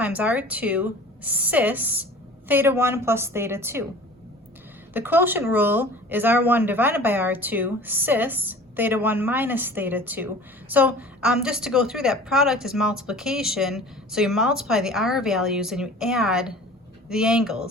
R2 cis theta 1 plus theta 2. The quotient rule is R1 divided by R2 cis theta 1 minus theta 2. So just to go through that, product is multiplication. So you multiply the R values and you add the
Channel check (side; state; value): both; normal; correlation 0.43